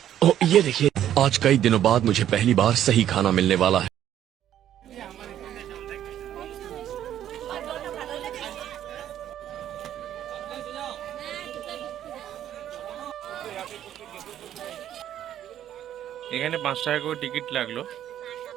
ओह, ये देखिए, आज कई दिनों बाद मुझे पहली बार सही खाना मिलने वाला है। এখানে 5 টাকা করে টিকিট লাগলো।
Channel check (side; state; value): left; quieter; 11.1 dB